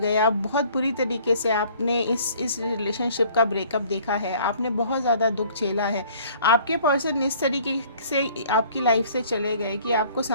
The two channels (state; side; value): inverted; both; correlation -0.55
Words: आप बहुत बुरी तरीके से आपने इस रिलेशनशिप का ब्रेकअप देखा है। आपने बहुत ज़्यादा दुख झेला है। आपके पर्सन इस तरीके से आपकी लाइफ से चले गए कि आपको